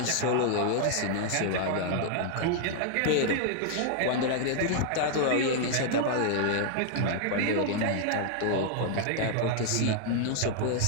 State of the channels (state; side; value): different; both; correlation 0.00